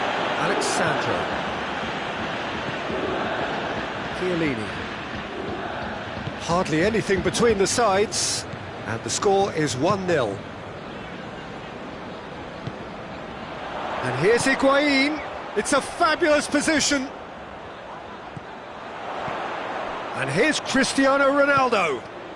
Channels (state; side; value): identical; both; correlation 1.00